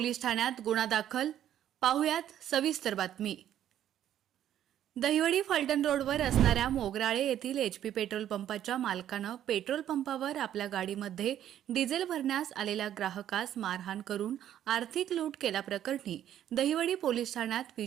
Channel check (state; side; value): quieter; left; 11.1 dB